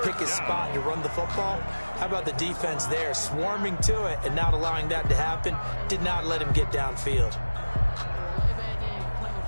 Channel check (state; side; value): inverted; both; correlation -1.00